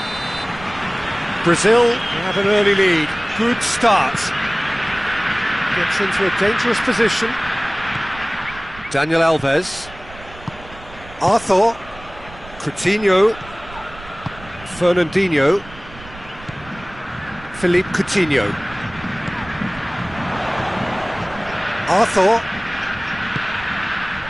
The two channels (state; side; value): noise; right; rumble, 18 dB below the sound